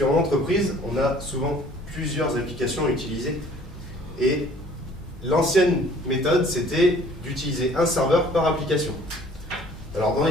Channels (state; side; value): normal; both; correlation 0.53